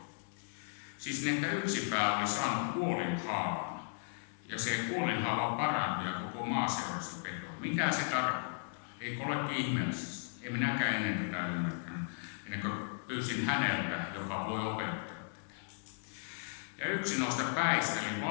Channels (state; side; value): silent; right; digital silence